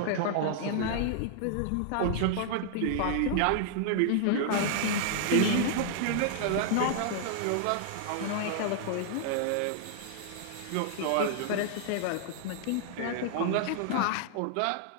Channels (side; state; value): both; different; correlation -0.01